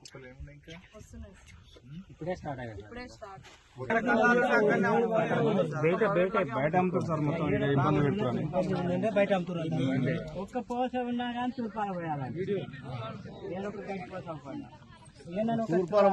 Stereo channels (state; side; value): identical; both; correlation 1.00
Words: కుప్పలు ఏమున్నాయి? ఇంకా ఇప్పుడే స్టార్ట్ అయ్యాయి. బయట అమ్ముతారు సార్, మొత్తం ఇబ్బంది పెడుతున్నారు. బయట అమ్ముతున్నారు. ఒక్క పోస ఉన్నా కానీ తూర్పాల పోయాలి. తూర్పాల